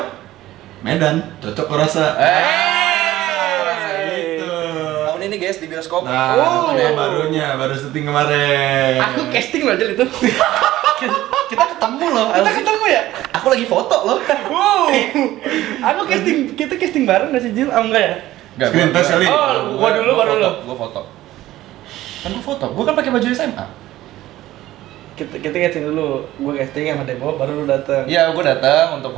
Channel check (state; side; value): quieter; left; 15.3 dB